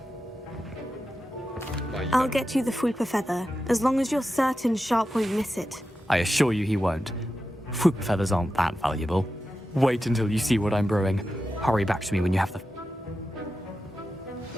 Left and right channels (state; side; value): normal; both; correlation 0.91